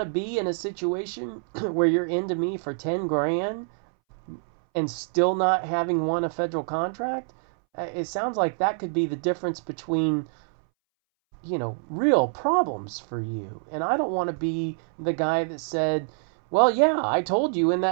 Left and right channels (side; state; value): left; silent; 61 dB below the other